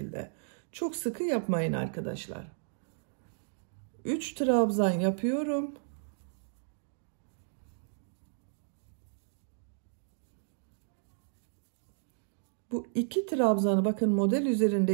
Çok sıkı yapmayın arkadaşlar. 3 trabzan yapıyorum. Bu 2 trabzanı bakın model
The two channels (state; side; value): silent; left; digital silence